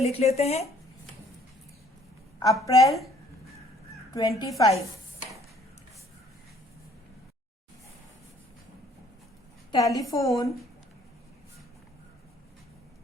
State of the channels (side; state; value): both; normal; correlation 0.60